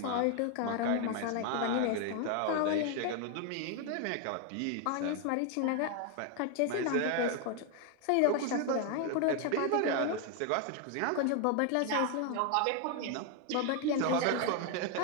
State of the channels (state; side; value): different; both; correlation 0.01